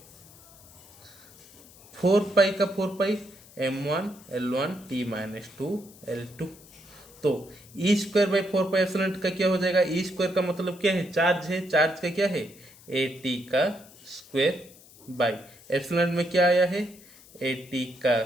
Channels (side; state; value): left; noise; hiss, 23 dB below the sound